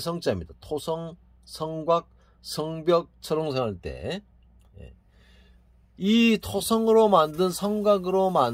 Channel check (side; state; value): both; identical; correlation 1.00